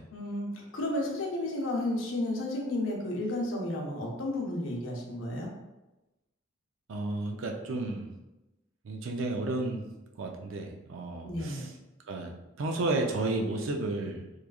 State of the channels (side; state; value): both; normal; correlation 0.44